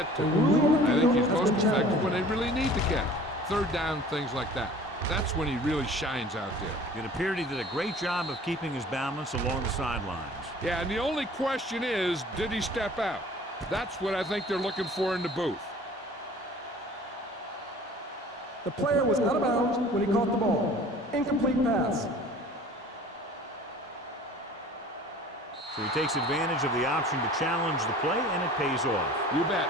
to. I think he's most effective when they really need to catch. Third down, things like that. That's when he really shines out there. It appeared he did a great job of keeping his balance along the sidelines. Yeah, and the only question is, did he step out? That's what I think they're looking for in the booth. The player was out of bounds when he caught the ball. Incomplete pass. So he takes advantage of the option to challenge the play, and it pays off. You bet.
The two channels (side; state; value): both; normal; correlation 0.47